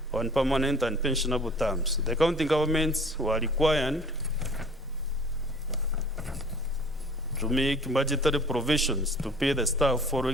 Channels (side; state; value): both; normal; correlation 0.49